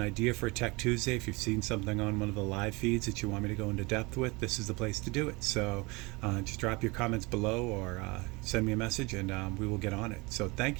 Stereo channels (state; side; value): quieter; left; 25.6 dB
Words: idea for a Tech Tuesday, if you've seen something on one of the live feeds that you want me to go into depth with, this is the place to do it. So just drop your comments below or send me a message and we will get on it. So